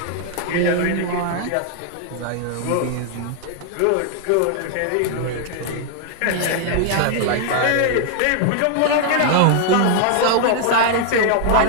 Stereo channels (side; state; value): both; different; correlation 0.00